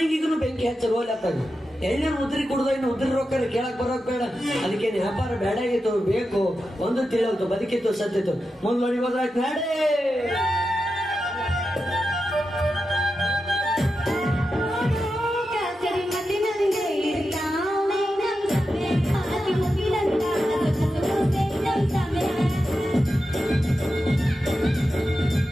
ಬೆಂಕಿ ಹಚ್ಚರು ಹೋಗ್ಲತ್ತಾಗ ಎಣ್ಣೆ ಉದ್ರಿ ಕುಡ್ದ ಇನ್ನು ಉದ್ರಿ ರೊಕ್ಕ ಕೇಳಕ್ ಬರೋಕ್ ಬೇಡ. ಅದಕ್ಕೆ ವ್ಯಾಪಾರ ಬೇಡ ಆಗಿತ್ತು, ಬೇಕು ಒಂದು ತಿಳಿಲ್ತು, ಬದುಕಿತ್ತು ಸತ್ತಿತ್ತು. ಮುಂದೆ ಹೋದ್ರಾಯ್ತು ನಾಡೇ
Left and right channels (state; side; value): normal; both; correlation 0.90